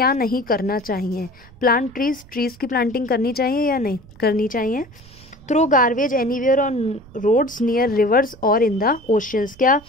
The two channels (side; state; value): right; noise; rumble, 24 dB below the sound